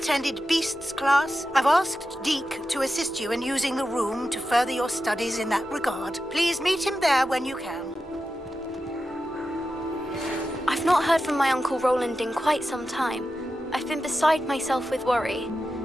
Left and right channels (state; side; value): normal; both; correlation 0.91